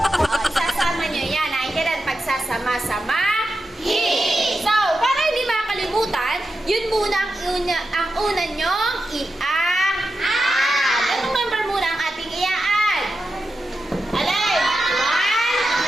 isasama nyo yan. Naintindihan pagsasama-sama. So, para hindi makalimutan, yun muna ang una nyong i-add. Anong number muna ang ating i-add? Alay! 1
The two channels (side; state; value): both; normal; correlation 0.90